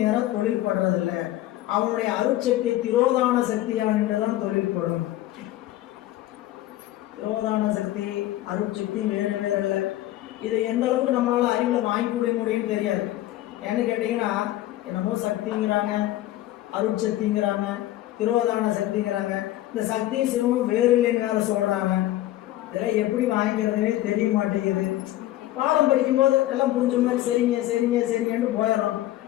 தொழில்படுறதில்லை. அவனுடைய அருட்சக்தி திரோதான சக்தியா என்றுதான் தொழில்படும். திரோதான சக்தி அருட்சக்தி வேறு வேறு இல்லை. இதை எந்த அளவுக்கு நம்மளால அறிவில் வாங்கி கொடுக்க முடியும்னு தெரியாது. ஏன்னு கேட்டீங்கன்னா, என்னமோ சக்திங்கிறாங்க, அருட்சக்திங்கிறாங்க, திரோதான சக்திங்கிறாங்க. இந்த சக்தி சிவமும் வேறு இல்லைன்னு வேற சொல்றாங்க. இதெல்லாம் எப்படி வாங்கிக்கிறதுனே தெரிய மாட்டேங்குது. பாடம் படிக்கும்போது எல்லாம் புரிஞ்ச மாதிரி சரிங்க சரிங்க சரிங்கன்னு போயிடுறோம்.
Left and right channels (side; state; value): right; quieter; 15.1 dB